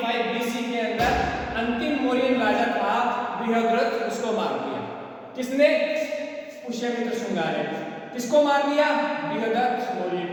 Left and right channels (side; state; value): both; identical; correlation 1.00